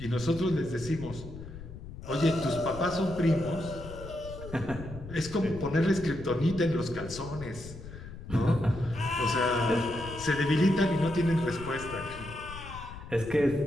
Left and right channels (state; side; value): noise; left; rumble, 13 dB below the sound